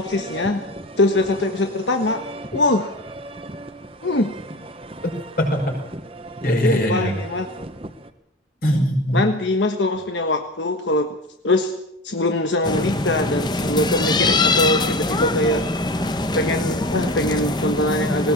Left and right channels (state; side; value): normal; both; correlation 0.30